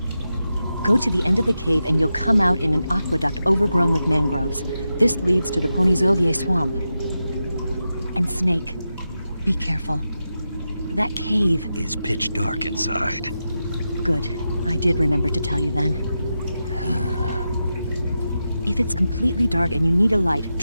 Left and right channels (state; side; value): inverted; both; correlation -0.89